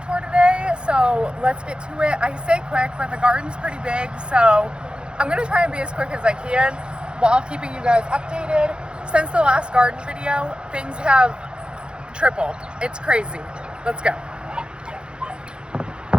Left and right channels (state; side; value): late; left; 0.052 ms